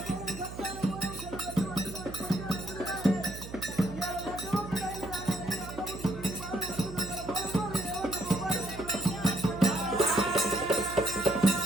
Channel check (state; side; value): noise; right; hum, 11 dB below the sound